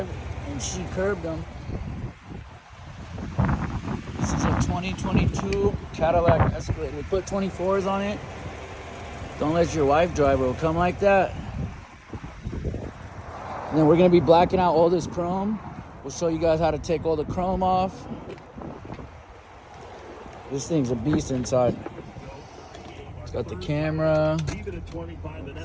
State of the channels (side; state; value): both; identical; correlation 1.00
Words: and she curbed him. This is a 2022 Cadillac Escalade. We put 24s on it. Don't let your wife drive, it'll come like that. And then we're gonna be blacking out all this chrome. We'll show you guys how to take all the chrome off. This thing's a beast inside. It's got the camera. It's